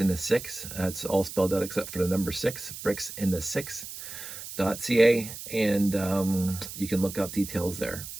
the 6. That's all spelled out except for the number 6, bricks in the 6.ca, and you can look up details there.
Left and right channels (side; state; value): right; noise; hiss, 10 dB below the sound